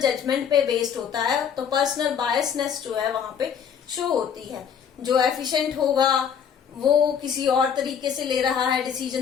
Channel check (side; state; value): right; quieter; 7.8 dB